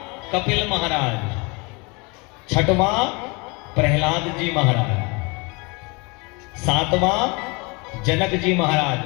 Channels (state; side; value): quieter; right; 28.7 dB